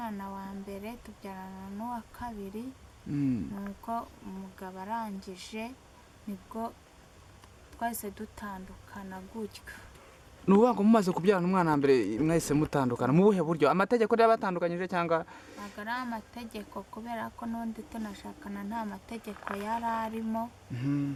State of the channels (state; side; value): identical; both; correlation 1.00